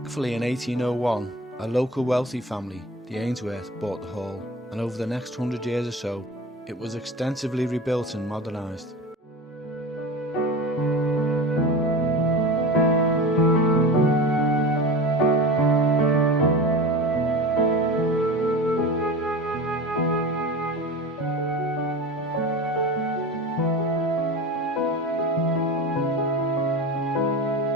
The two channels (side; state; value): both; normal; correlation 0.31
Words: in 1801 a local wealthy family, the Ainsworth, bought the hall, and over the next 100 years or so it was extensively rebuilt and modernised.